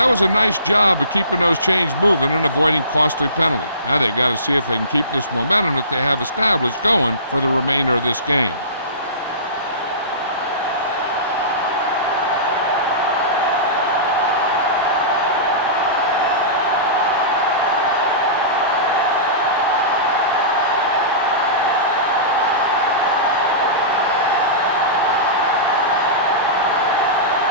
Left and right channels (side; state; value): both; inverted; correlation -0.31